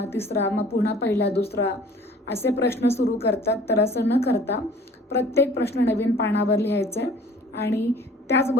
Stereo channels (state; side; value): normal; both; correlation 0.50